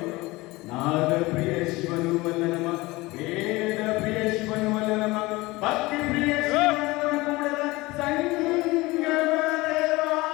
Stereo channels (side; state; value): right; quieter; 21.3 dB